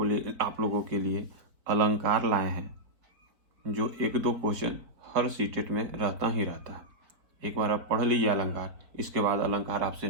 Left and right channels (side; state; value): left; late; 4.8 ms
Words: लोगों के लिए अलंकार लाए हैं, जो एक दो क्वेश्चन हर सीटेट में रहता ही रहता है। एक बार आप पढ़ लीजिए अलंकार, इसके बाद अलंकार आपसे